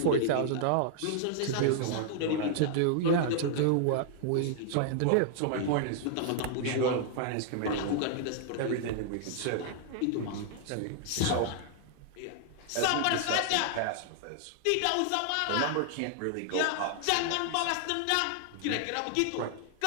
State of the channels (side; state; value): both; different; correlation -0.01